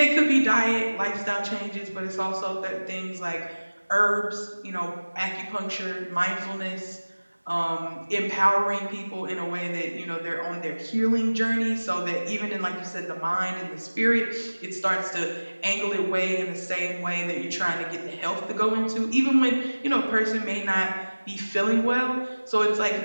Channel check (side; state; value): both; inverted; correlation -1.00